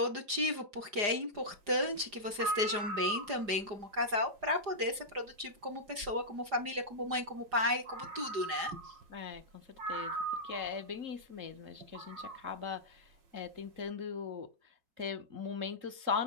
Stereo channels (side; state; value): left; late; 4.9 ms